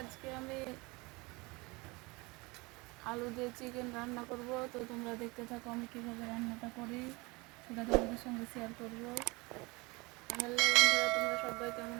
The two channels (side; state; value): left; quieter; 25.1 dB